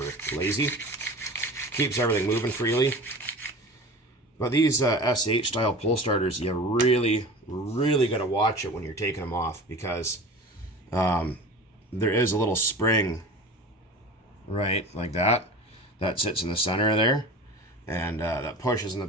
lazy. Keeps everything moving freely. But these SH style pole starters, you really, really got to watch it when you're taking them off, because there is a little spring, right, like that sits in the center of there, and that pushes in the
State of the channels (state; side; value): normal; both; correlation 0.36